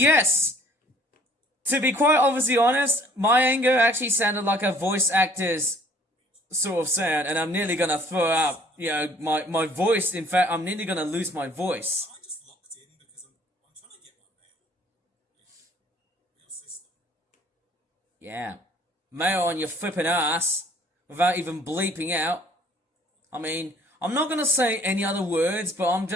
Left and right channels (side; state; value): both; normal; correlation 0.57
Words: To be quite obviously honest, my anger actually sounded like a voice actor's sort of sound, and I'm nearly gonna throw out, my voice. In fact, I'm nearly gonna lose my voice. I just locked in because I'm trying to get my mail system. Yeah. Mail on your flipping ass, without even bleeping out. I mean, I'm not gonna say any other words, but I'm